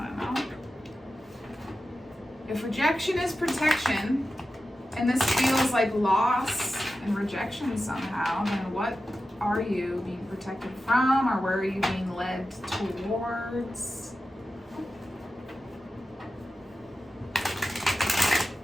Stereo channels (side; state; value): both; normal; correlation 0.92